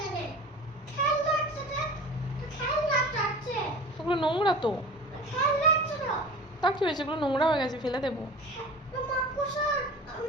খেলনা আছে তো খেলনা আছে। ওগুলো নোংরা তো। খেলনা আছে তো। তা কি হয়েছে? ওগুলো নোংরা হয়ে গেছে, ফেলে দেবো। মাকড়সা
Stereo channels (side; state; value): both; normal; correlation 0.38